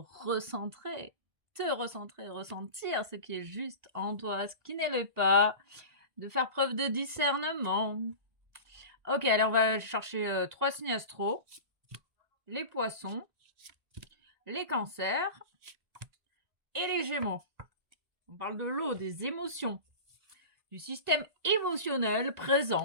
ce qui est juste en toi, ce qui n'est le pas, de faire preuve de discernement? Ok, allez, on va chercher trois signes astro, les poissons, les cancers et les gémeaux. On parle de l'eau, des émotions, du système émotionnel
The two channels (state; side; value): late; left; 1.5 ms